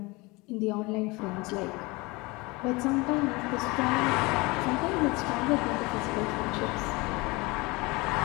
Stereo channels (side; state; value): right; quieter; 24.4 dB